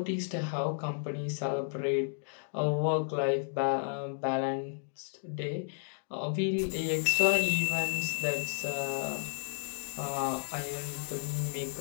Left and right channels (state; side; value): silent; right; digital silence